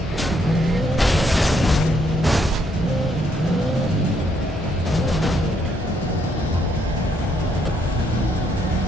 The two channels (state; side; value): normal; both; correlation 0.72